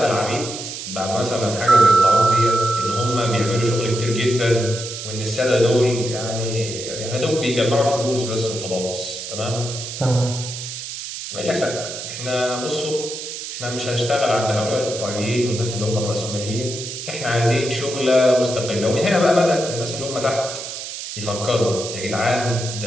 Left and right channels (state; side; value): noise; right; hiss, 8 dB below the sound